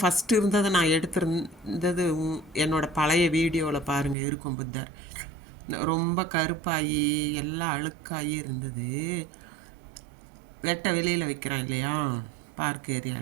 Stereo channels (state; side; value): drops out; left; at 4.2 s